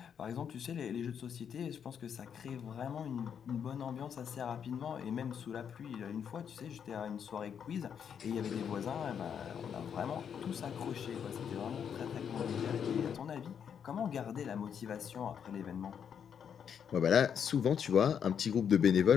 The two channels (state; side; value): quieter; right; 7.8 dB